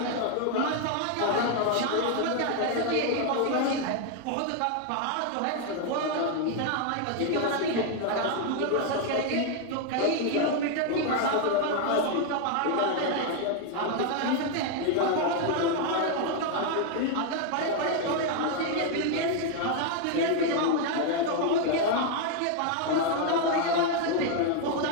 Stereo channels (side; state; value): both; different; correlation 0.01